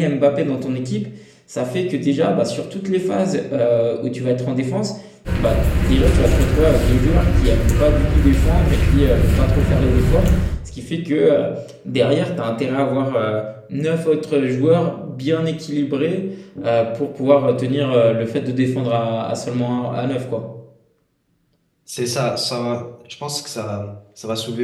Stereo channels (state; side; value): identical; both; correlation 1.00